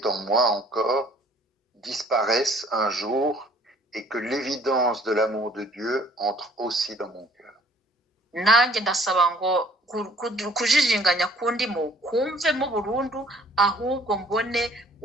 en moi encore disparaisse un jour et que l'évidence de l'amour de Dieu entre aussi dans mon cœur. Nanjye ndasaba ngo kujijinganya kundimo kumvemo burundu, ahubwo mbone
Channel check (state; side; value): normal; both; correlation 0.57